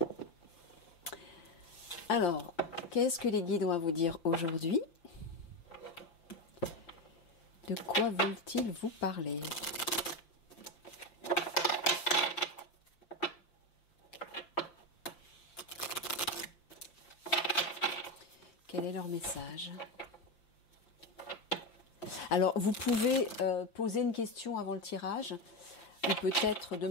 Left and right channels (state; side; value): late; right; 5.8 ms